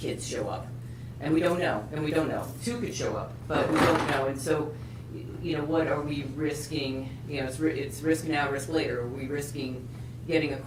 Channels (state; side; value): identical; both; correlation 1.00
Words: kids show up. And we don't know, 2 could show up, but we don't know. And so, what are we risking? It's risk now, risk later. Are we risking getting a